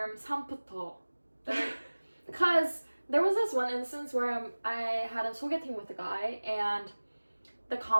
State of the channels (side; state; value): both; inverted; correlation -1.00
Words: 삼부터, because there was this one instance where I had a 소개팅 with a guy and the